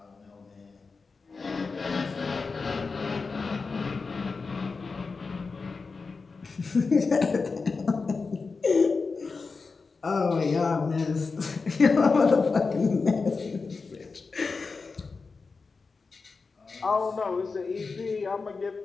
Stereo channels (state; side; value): quieter; right; 4.4 dB